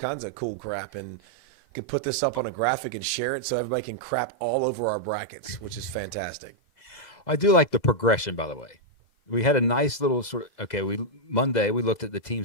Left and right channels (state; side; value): late; right; 2.0 ms